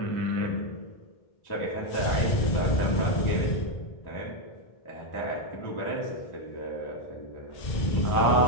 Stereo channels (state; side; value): late; right; 2.1 ms